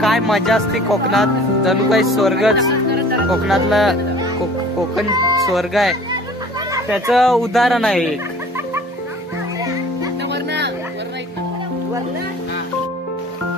काय मजा असते कोकणात, जणू काही स्वर्गच. कोकणातला कोकण स्वर्ग आहे, त्याचं उदाहरण आहे एक.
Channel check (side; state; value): both; normal; correlation 0.47